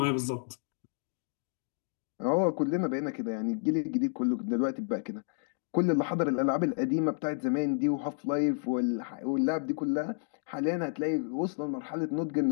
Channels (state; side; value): silent; right; digital silence